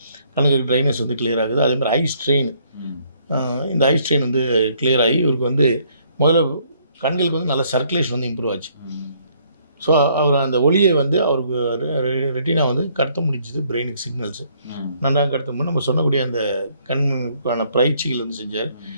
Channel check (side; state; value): both; inverted; correlation -0.66